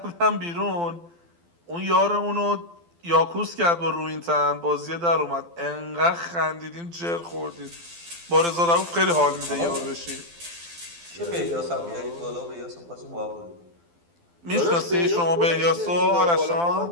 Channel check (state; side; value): late; left; 12 ms